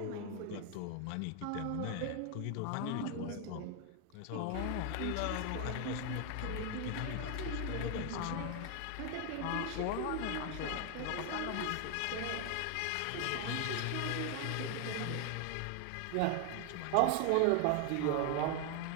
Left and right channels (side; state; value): both; different; correlation 0.00